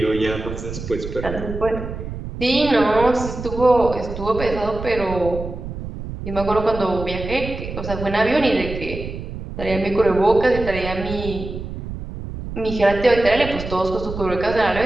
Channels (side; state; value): right; noise; rumble, 8 dB below the sound